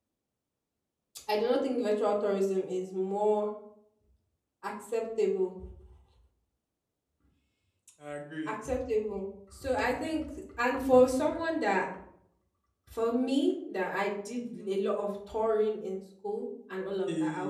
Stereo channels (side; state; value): both; identical; correlation 1.00